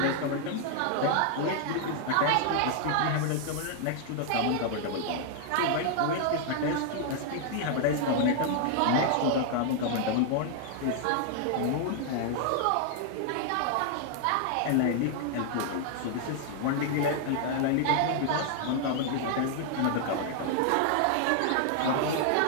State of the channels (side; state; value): both; different; correlation 0.00